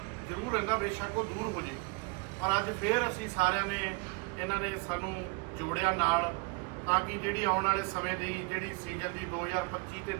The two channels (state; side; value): quieter; left; 29.7 dB